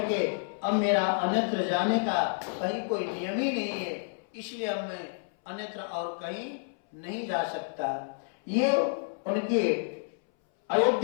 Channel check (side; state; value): right; silent; 58 dB below the other